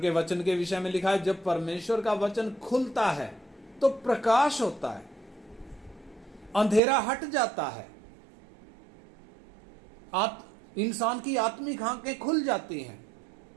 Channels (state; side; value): drops out; left; at 6.8 s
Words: वचन के विषय में लिखा है, जब परमेश्वर का वचन खुलता है तो प्रकाश होता है, अंधेरा हट जाता है, इंसान की आत्मिक आंखें खुल जाती हैं,